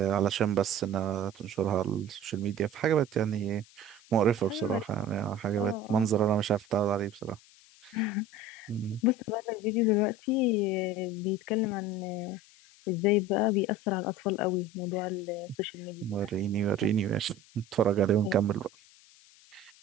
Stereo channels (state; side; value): noise; left; hiss, 25 dB below the sound